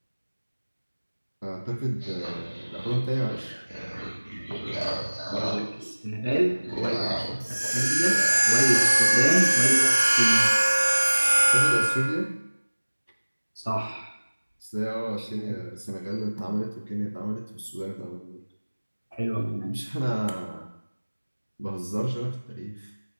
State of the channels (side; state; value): both; inverted; correlation -1.00